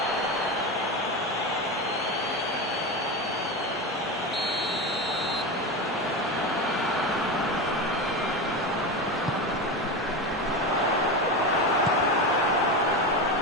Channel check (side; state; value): both; normal; correlation 0.20